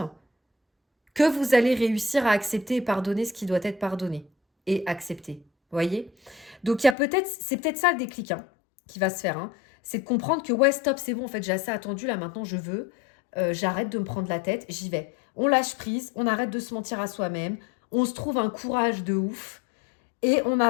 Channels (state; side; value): drops out; right; at 7.0 s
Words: que vous allez réussir à accepter et pardonner ce qui doit être pardonné et accepté. Vous voyez ? Donc, c'est peut-être ça le déclic hein, qui va se faire. Hein. C'est de comprendre que, ouais, stop, c'est bon, en fait, j'ai assez attendu, là, maintenant, je veux. J'arrête de me prendre la tête, j'y vais. On lâche prise, on arrête de se mentir à soi-même, on se trouve un courage de ouf et on